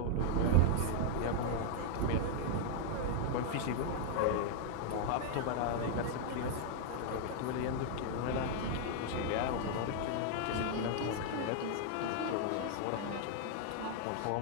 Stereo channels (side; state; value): both; different; correlation -0.01